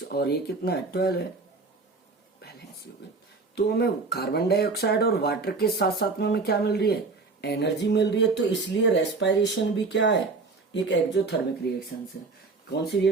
और ये कितना है, 12 है, बैलेंस हो गई। तो हमें कार्बन डाइऑक्साइड और वाटर के साथ साथ में हमें क्या मिल रही है, एनर्जी मिल रही है। तो इसलिए रेस्पायरेशन भी क्या है, एक एक्सोथर्मिक रिएक्शन है। कौन सी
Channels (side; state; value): left; quieter; 4.0 dB